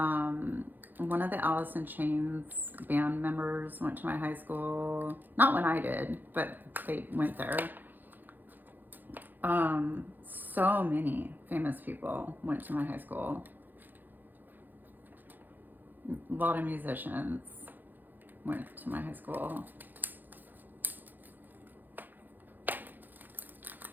of the Alice in Chains band members went to my high school. Not when I did, but they went there. So many famous people went to my high school. A lot of musicians went to my high school.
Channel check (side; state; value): left; late; 0.088 ms